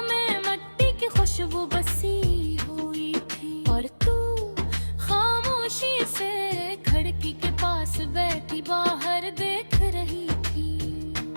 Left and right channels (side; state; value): both; inverted; correlation -1.00